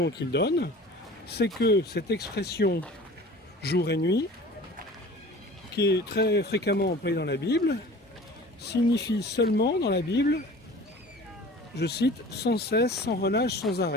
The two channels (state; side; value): normal; both; correlation 0.43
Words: qu'il donne, c'est que cette expression jour et nuit, qui est très fréquemment employée dans la Bible, signifie seulement dans la Bible, je cite, sans cesse, sans relâche, sans